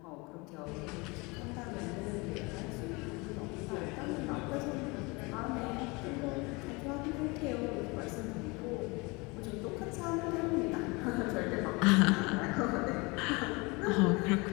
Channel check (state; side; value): quieter; right; 26.5 dB